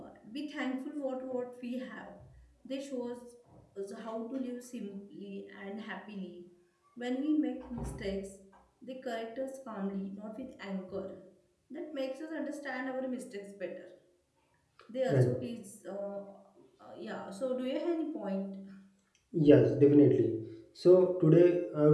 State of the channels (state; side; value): identical; both; correlation 1.00